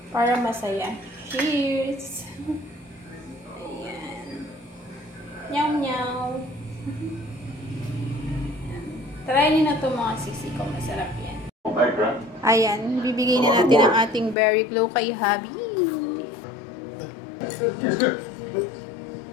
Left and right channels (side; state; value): right; drops out; at 14.4 s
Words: para masaya. Cheers! Nyaw nyaw. Try nyo na ito mga sisi ko. Masarap yan. Ayan. Bibigay na natin ang ating Berry Glow kay Habi. Yes, good.